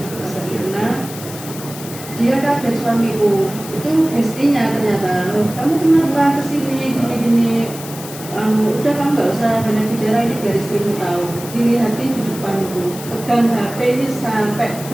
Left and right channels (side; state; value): left; noise; hiss, 13 dB below the sound